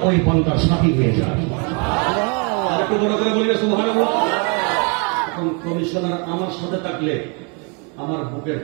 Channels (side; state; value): left; quieter; 35.1 dB